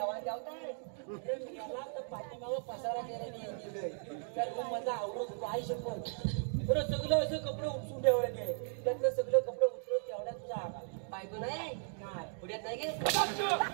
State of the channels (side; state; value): left; silent; digital silence